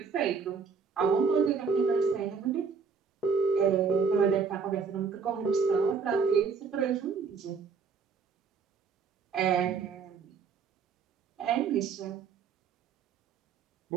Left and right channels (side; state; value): left; quieter; 5.6 dB